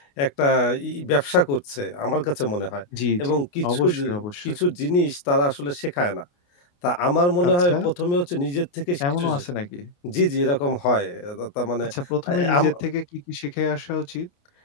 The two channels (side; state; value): right; late; 28 ms